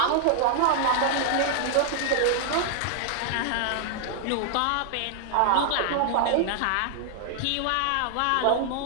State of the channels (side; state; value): both; different; correlation -0.01